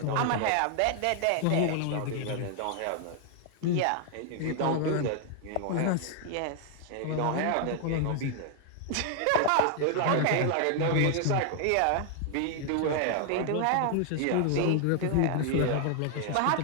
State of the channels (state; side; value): different; both; correlation 0.00